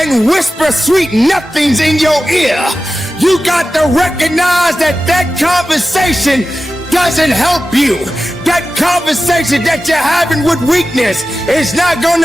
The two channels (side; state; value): both; normal; correlation 0.94